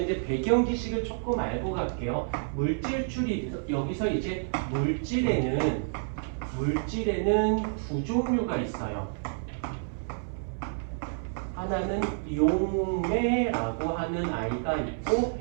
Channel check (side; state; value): left; silent; 58 dB below the other